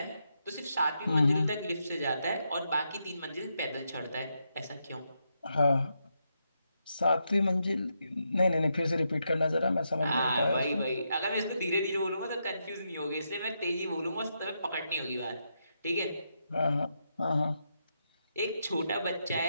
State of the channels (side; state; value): both; inverted; correlation -0.82